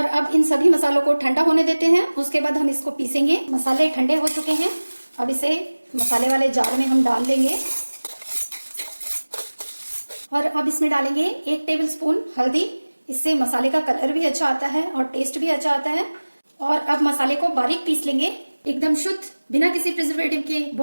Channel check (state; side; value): inverted; both; correlation -1.00